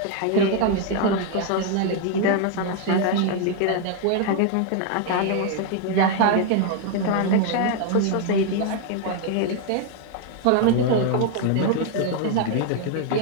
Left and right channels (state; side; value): different; both; correlation 0.00